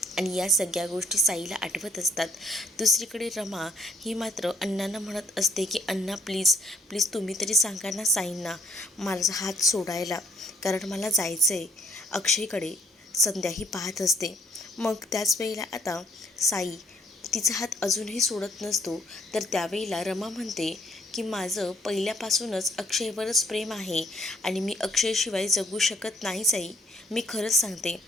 आणि या सगळ्या गोष्टी साईला आठवत असतात. दुसरीकडे रमा ही मात्र अण्णांना म्हणत असते की अण्णा प्लीज प्लीज तुम्ही तरी सांगा ना साईंना माझा हात सोडायला, कारण मला जायचं आहे अक्षयकडे. संध्याही पाहत असते. मग त्याच वेळेला आता साई तिचा हात अजूनही सोडत नसतो. तर त्यावेळेला रमा म्हणते की माझं पहिल्यापासूनच अक्षयवरच प्रेम आहे आणि मी अक्षयशिवाय जगू शकत नाही साई. मी खरंच सांगते,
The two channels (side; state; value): both; normal; correlation 0.64